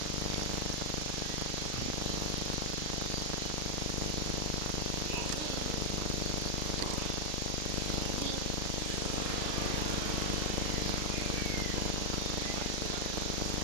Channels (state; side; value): late; right; 32 ms